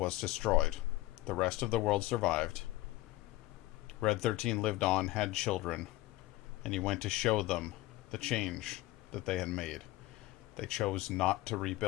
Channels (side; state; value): right; quieter; 17.6 dB